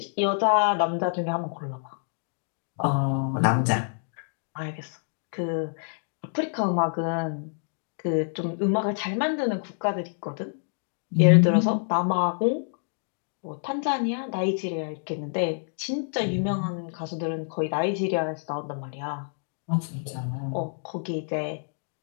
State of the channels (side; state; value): right; silent; digital silence